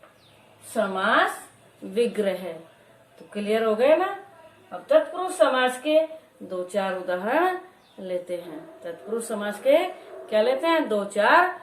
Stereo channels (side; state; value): both; identical; correlation 1.00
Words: समास विग्रह। तो क्लियर हो गए ना। अब तत्पुरुष समास के 2-4 उदाहरण लेते हैं। तत्पुरुष समास के क्या लेते हैं,